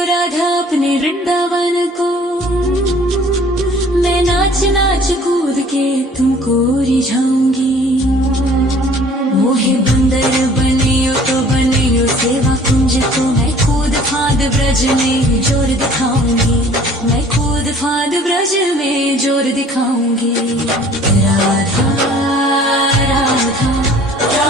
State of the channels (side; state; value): both; normal; correlation 0.52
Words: राधा अपने वृंदावन को मैं नाच नाच कूद के तुमको रिझाऊंगी मोहे बंदर बनियो तो बनियो सेवा कुंज को मैं कूद फांद ब्रज में जोर दिखाऊंगी मैं कूद फांद ब्रज में जोर दिखाऊंगी राधा राधा